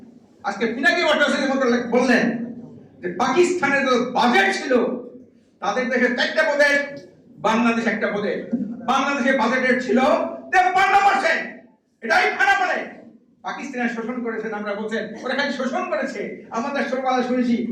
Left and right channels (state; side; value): identical; both; correlation 1.00